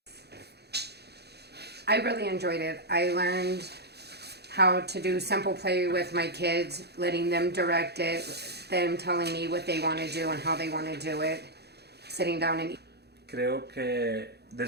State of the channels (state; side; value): late; left; 0.48 ms